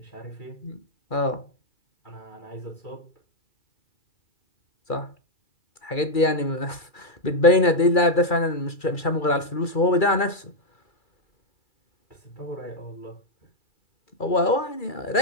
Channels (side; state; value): right; late; 2.3 ms